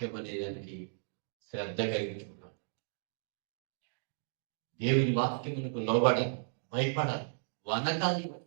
అనేదానికి శ్రద్ధ కలిగించుకుంటాను. దేవుని వాక్యమునకు లోబడాలి, భయపడాలి, వనకాలి.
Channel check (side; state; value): left; silent; digital silence